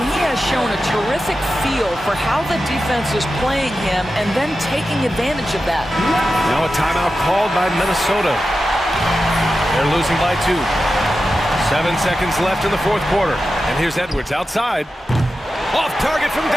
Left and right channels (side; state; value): both; normal; correlation 0.91